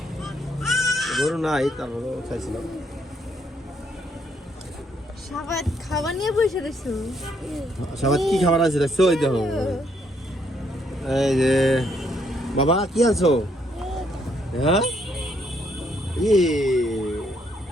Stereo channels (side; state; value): both; normal; correlation 0.71